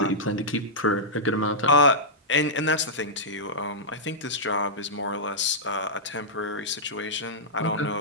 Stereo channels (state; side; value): normal; both; correlation -0.12